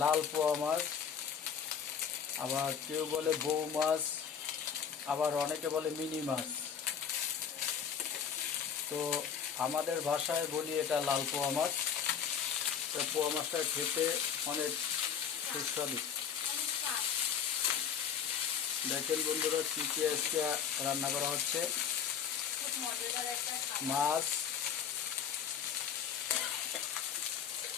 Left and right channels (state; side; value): quieter; right; 7.6 dB